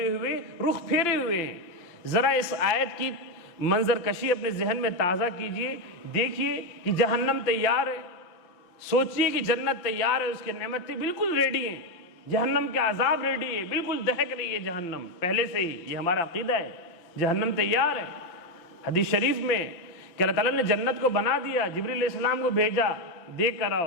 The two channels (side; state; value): right; late; 5.8 ms